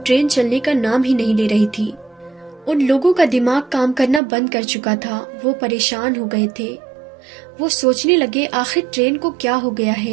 ٹرین چلنے کا نام ہی نہیں لے رہی تھی۔ ان لوگوں کا دماغ کام کرنا بند کر چکا تھا، وہ پریشان ہو گئے تھے۔ وہ سوچنے لگے، آخر ٹرین کو کیا ہو گیا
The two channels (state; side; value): drops out; left; at 4.2 s